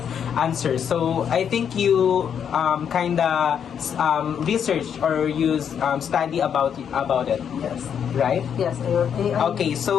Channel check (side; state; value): right; quieter; 8.1 dB